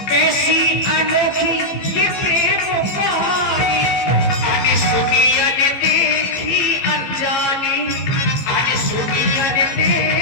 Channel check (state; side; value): late; right; 15 ms